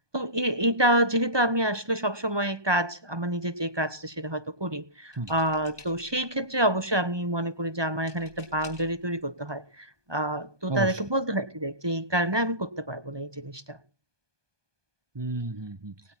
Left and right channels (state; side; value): late; left; 1.2 ms